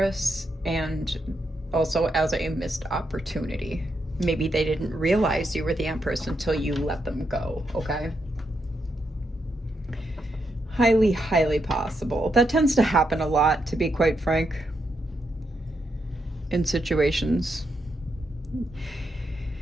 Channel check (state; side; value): normal; both; correlation 0.82